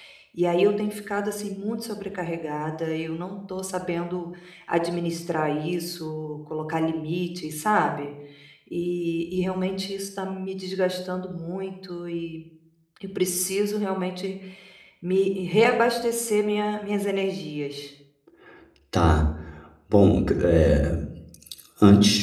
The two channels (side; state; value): both; identical; correlation 1.00